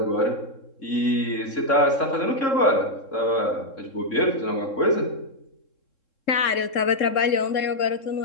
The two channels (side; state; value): right; late; 3.7 ms